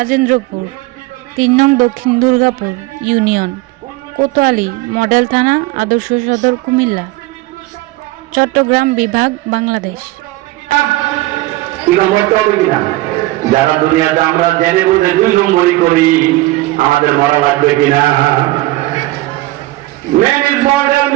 ৩ নং দক্ষিণ দুর্গাপুর ইউনিয়ন, কোতোয়ালী মডেল থানা, আদর্শ সদর, কুমিল্লা, চট্টগ্রাম বিভাগ, বাংলাদেশ। যারা দুনিয়াতে আমরা জেনে বুঝে ২ নম্বরই করি, আমাদের মরা লাগবে কিনা? Man is mortal,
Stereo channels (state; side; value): quieter; left; 18.9 dB